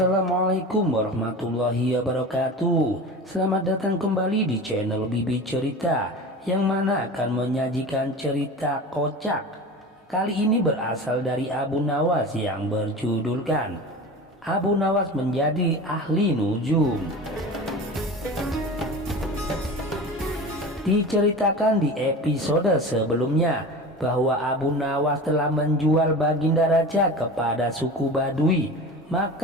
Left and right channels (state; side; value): normal; both; correlation 0.33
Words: warahmatullahi wabarakatuh. Selamat datang kembali di channel Bibi Cerita, yang mana akan menyajikan cerita kocak. Kali ini berasal dari Abu Nawas yang berjudulkan Abu Nawas menjadi ahli nujum. Diceritakan di episode sebelumnya bahwa Abu Nawas telah menjual Baginda Raja kepada suku Badui,